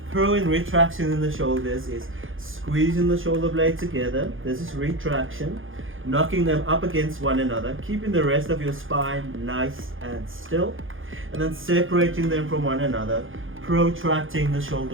Pro and retraction in the shoulders is squeezing the shoulder blade together. This is retraction. knocking them up against one another, keeping the rest of your spine nice and still, and then separating them from one another, protracting the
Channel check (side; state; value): left; late; 0.58 ms